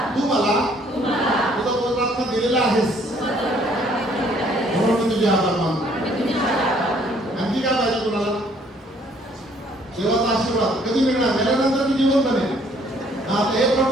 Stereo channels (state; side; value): normal; both; correlation 0.62